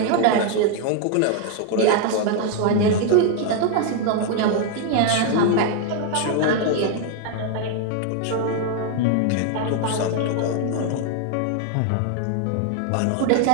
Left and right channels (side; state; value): both; different; correlation 0.00